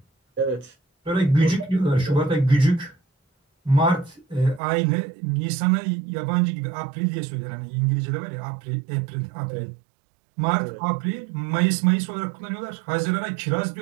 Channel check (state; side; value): drops out; left; at 4.6 s